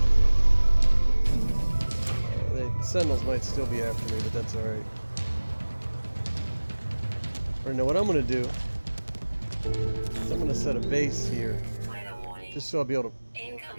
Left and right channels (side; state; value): both; inverted; correlation -1.00